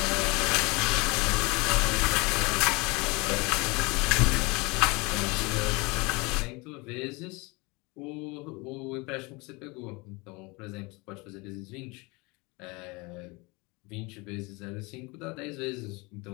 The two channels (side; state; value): right; quieter; 26.3 dB